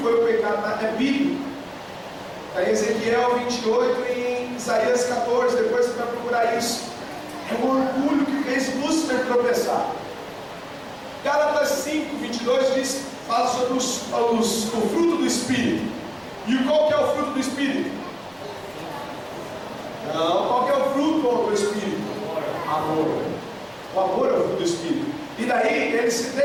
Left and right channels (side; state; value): both; identical; correlation 1.00